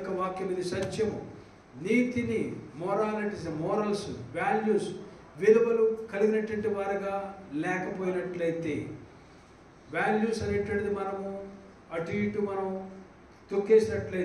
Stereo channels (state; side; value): identical; both; correlation 1.00